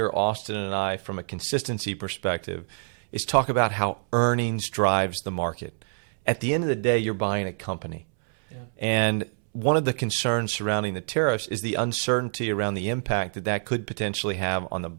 Austin and I from a consistency perspective is talk about how earnings drives the market. At the end of the day, you're buying a company. Yeah. And one of the concerns surrounding the tariffs is the uncertainty around the impact that that could potentially have on the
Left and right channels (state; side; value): silent; left; 61 dB below the other